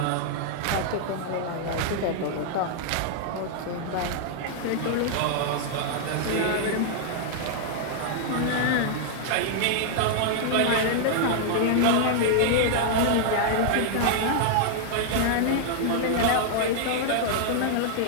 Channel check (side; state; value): both; different; correlation -0.01